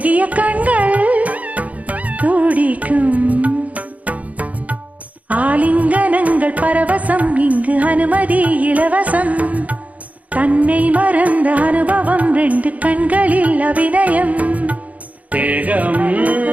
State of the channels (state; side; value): late; left; 0.071 ms